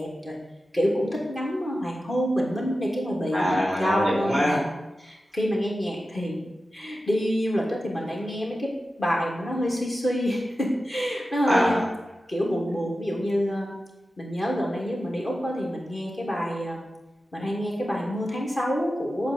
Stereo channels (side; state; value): both; normal; correlation 0.93